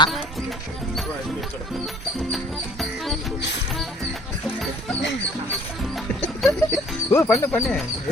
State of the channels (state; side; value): normal; both; correlation 0.55